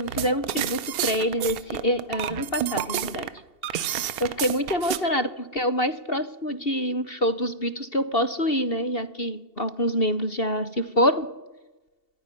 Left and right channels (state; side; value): late; right; 2.7 ms